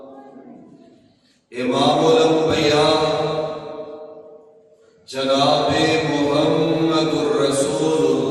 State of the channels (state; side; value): identical; both; correlation 1.00